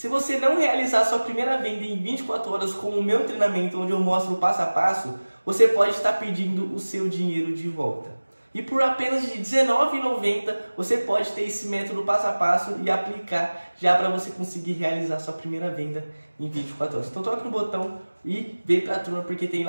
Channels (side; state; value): both; inverted; correlation -1.00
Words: você não realizar sua primeira venda em 24 horas com o meu treinamento, onde eu mostro o passo a passo, você pode estar perdendo o seu dinheiro de volta. E por apenas de R$19,90 você pode ter esse método passo a passo e aplicar já para você conseguir realizar sua primeira venda em 24 horas. Então toque no botão e vem pra turma, porque tem